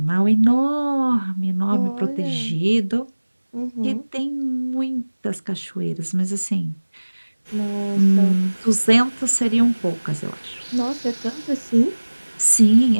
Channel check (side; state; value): both; inverted; correlation -1.00